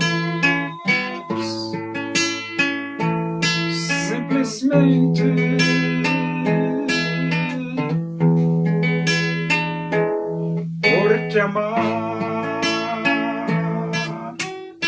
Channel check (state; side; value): identical; both; correlation 1.00